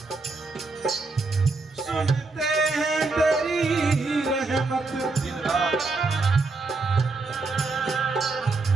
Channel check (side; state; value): left; quieter; 3.7 dB